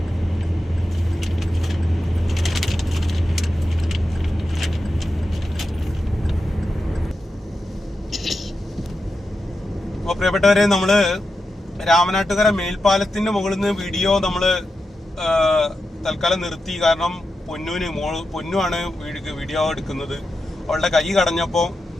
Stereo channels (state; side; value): normal; both; correlation 0.89